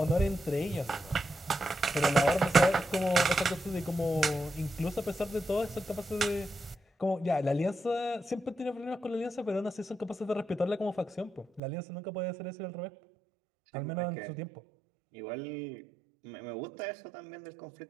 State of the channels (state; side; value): drops out; left; at 11.6 s